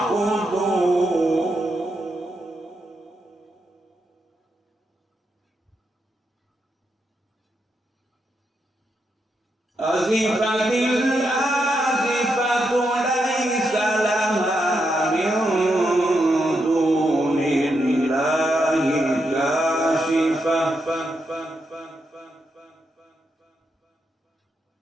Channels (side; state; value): both; normal; correlation 0.83